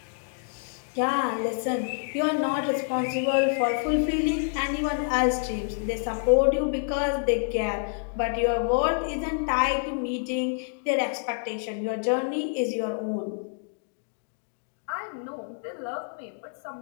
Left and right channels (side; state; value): right; silent; digital silence